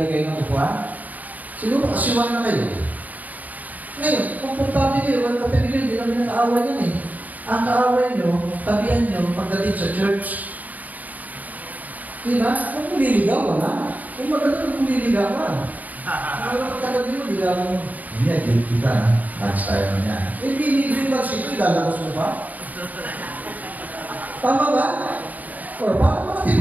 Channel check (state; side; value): late; left; 0.078 ms